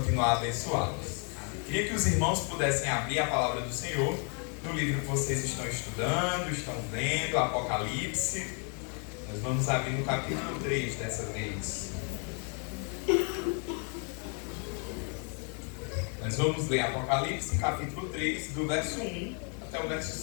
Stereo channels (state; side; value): quieter; right; 39.6 dB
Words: a abençoá-los. Queria que os irmãos pudessem abrir a palavra do Senhor no livro que vocês estão estudando, estão lendo, Apocalipse. Nós vamos abrir no capítulo 3 dessa vez. Nós vamos ler Apocalipse, capítulo 3, do verso 1 até o